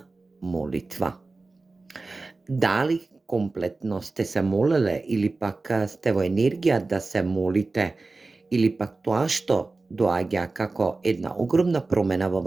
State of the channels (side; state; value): left; quieter; 3.5 dB